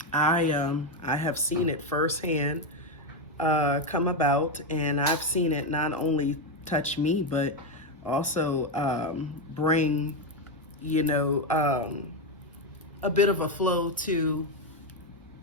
I have seen it firsthand come about, and I've seen it not only touch me but also bring a bit of a flow to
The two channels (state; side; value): normal; both; correlation 0.07